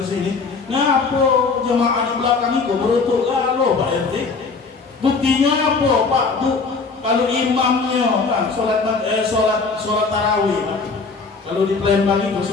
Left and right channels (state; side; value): quieter; right; 4.5 dB